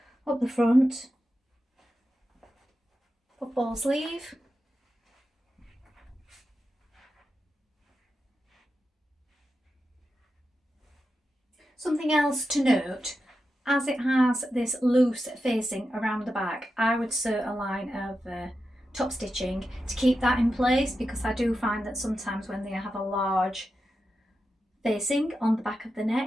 up the front, puffball sleeve, something else to note, as it has this loose facing around the back, I would sew a line of top stitching to keep that in place, because I do find that sometimes when they have a large facing on the back of the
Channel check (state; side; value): normal; both; correlation 0.89